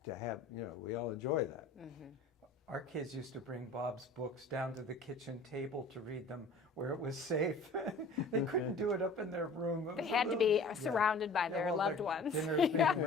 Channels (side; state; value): right; quieter; 3.2 dB